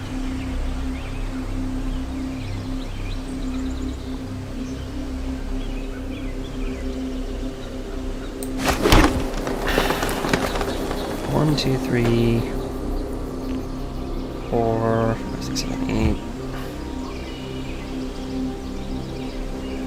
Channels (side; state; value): both; identical; correlation 1.00